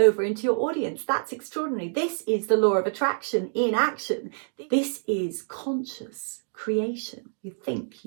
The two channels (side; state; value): left; silent; digital silence